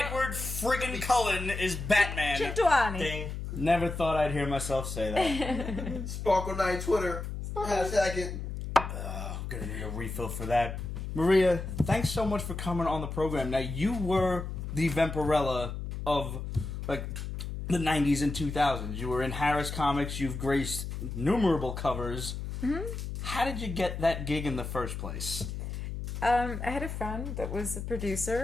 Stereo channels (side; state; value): left; noise; hum, 6 dB below the sound